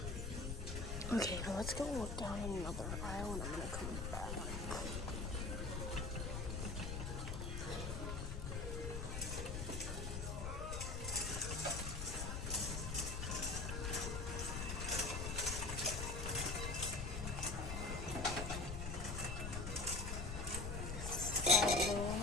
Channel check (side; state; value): left; noise; rumble, 3 dB below the sound